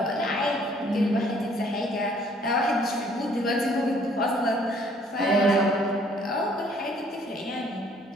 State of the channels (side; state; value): both; normal; correlation 0.60